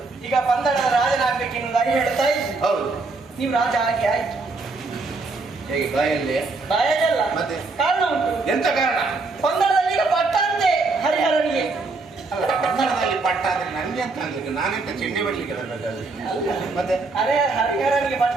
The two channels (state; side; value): quieter; left; 3.7 dB